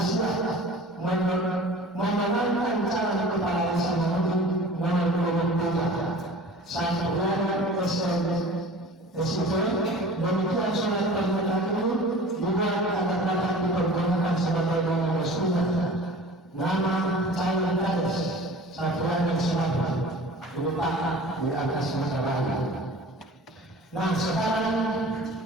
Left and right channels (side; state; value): both; normal; correlation 0.42